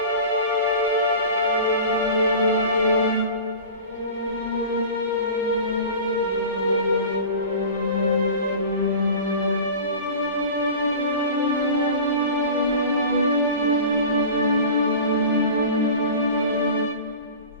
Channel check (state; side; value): inverted; both; correlation -0.36